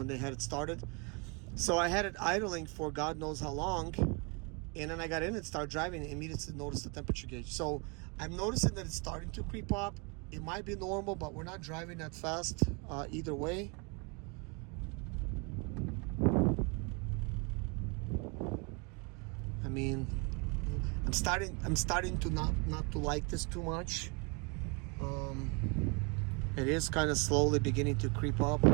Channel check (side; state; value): left; quieter; 31.9 dB